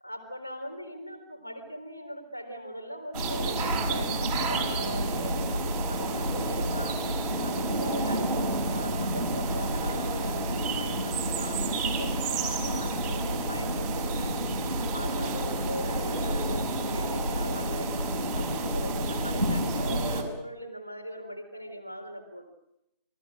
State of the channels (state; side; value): inverted; both; correlation -0.50